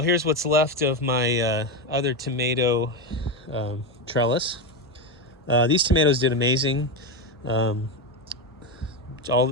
what's left of my other tomato trellis. These tomatoes did amazing. They're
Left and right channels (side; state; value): both; normal; correlation 0.13